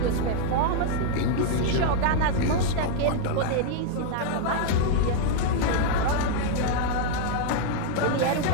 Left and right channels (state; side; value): different; both; correlation 0.00